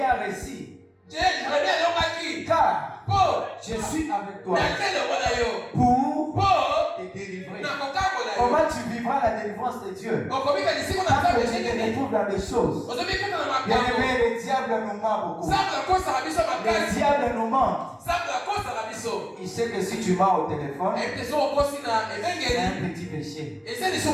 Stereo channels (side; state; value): both; identical; correlation 1.00